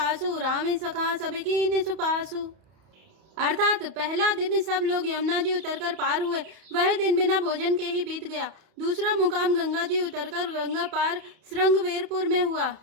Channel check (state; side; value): late; left; 32 ms